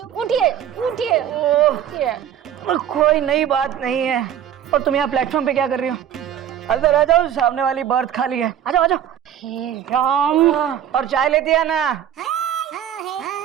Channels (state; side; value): quieter; left; 10.0 dB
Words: उठिए उठिए उठिए। कोई नई बात नहीं है। और तुम यहाँ प्लेटफॉर्म पे क्या कर रही हो? अंदर आ जाओ, सामने वाली बर्थ खाली है। आ जाओ आ जाओ। हे राम। और चाय लेती है ना?